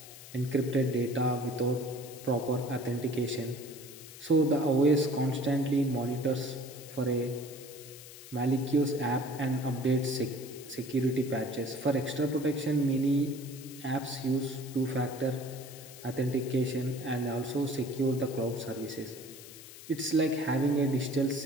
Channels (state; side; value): noise; left; hiss, 16 dB below the sound